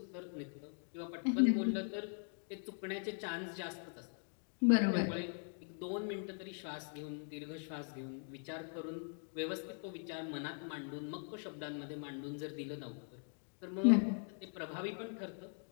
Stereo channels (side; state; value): right; silent; 51 dB below the other